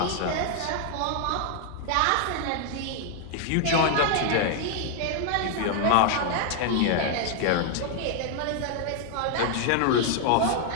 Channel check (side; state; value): both; different; correlation 0.00